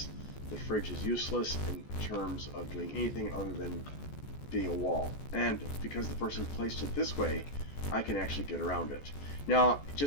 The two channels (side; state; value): right; late; 14 ms